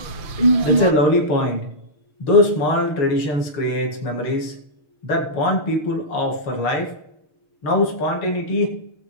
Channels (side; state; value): right; late; 6.6 ms